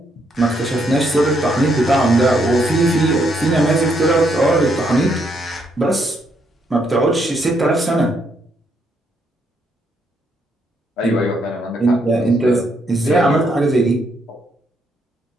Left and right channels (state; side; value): normal; both; correlation 0.75